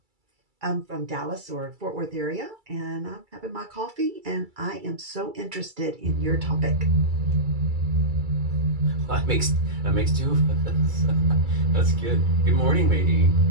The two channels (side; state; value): left; late; 2.3 ms